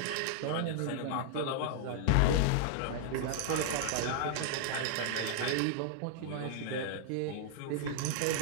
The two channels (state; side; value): different; both; correlation -0.01